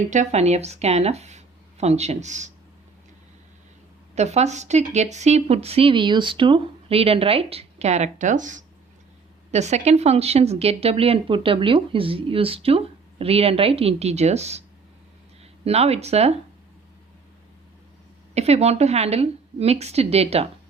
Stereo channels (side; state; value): left; quieter; 4.8 dB